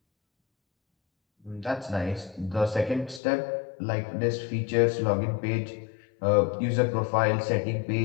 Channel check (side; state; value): right; drops out; at 3.2 s